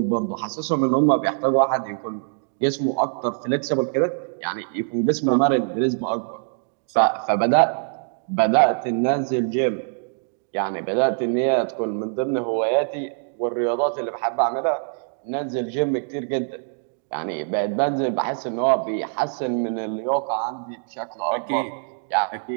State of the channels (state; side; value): silent; left; digital silence